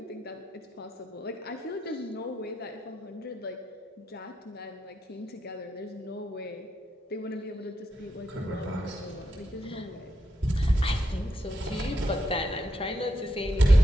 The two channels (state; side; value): normal; both; correlation 0.82